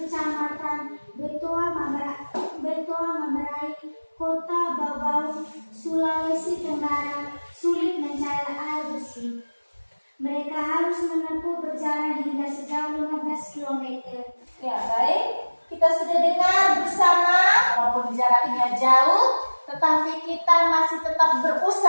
Betoa Mamberai, Kota Babau, Sulawesi Tenggara, sulit mencari air bersih. Mereka harus menempuh perjalanan hingga sejauh 15 km. Ya, baik. Kita sudah dengar bersama, walaupun jaraknya jauh, tetapi kita masih tetap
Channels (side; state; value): both; inverted; correlation -1.00